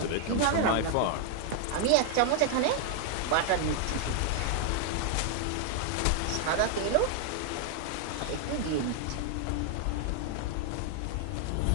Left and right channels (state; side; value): different; both; correlation 0.00